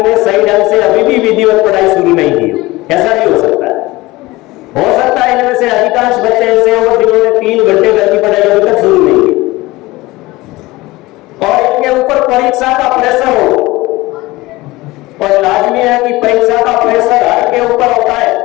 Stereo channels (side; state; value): right; quieter; 20.1 dB